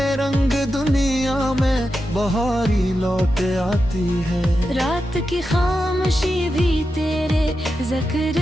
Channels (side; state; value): both; normal; correlation 0.89